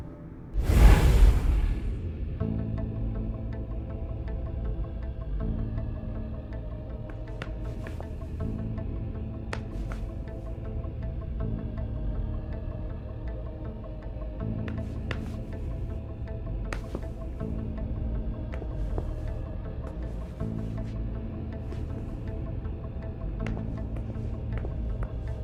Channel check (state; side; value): identical; both; correlation 1.00